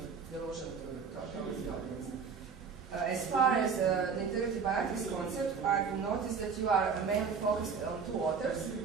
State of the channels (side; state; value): left; quieter; 5.9 dB